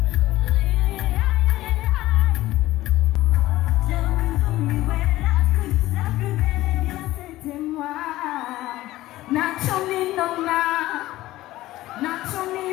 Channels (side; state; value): right; quieter; 16.4 dB